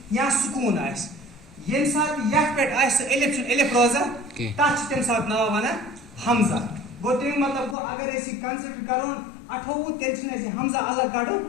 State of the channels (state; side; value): drops out; right; at 7.8 s